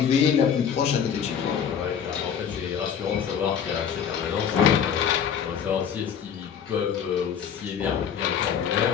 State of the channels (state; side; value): quieter; right; 7.9 dB